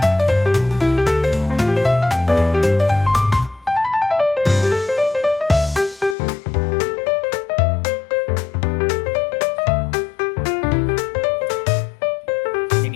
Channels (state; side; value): drops out; right; at 6.2 s